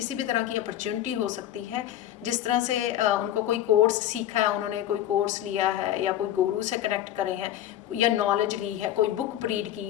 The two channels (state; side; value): quieter; right; 12.1 dB